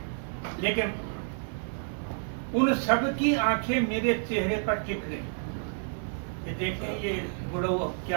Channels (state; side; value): silent; left; 58 dB below the other